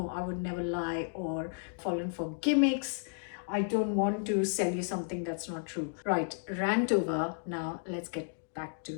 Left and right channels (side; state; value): right; silent; digital silence